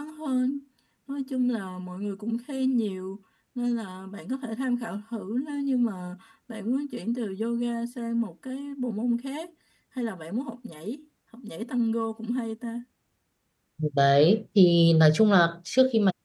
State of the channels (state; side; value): identical; both; correlation 1.00